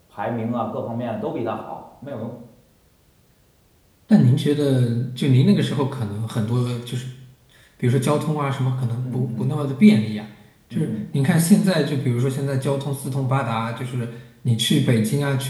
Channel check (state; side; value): identical; both; correlation 1.00